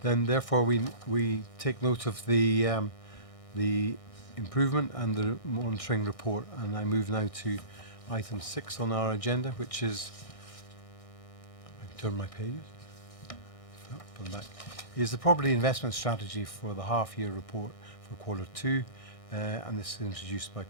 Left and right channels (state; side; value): late; right; 1.6 ms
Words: Then therefore we take note of the improvement and the monitoring report, and I move now to item 6 on our agenda, which is, I turn my pages, back, is the property investment strategy for the half-year report for quarter 2, and this is introduced by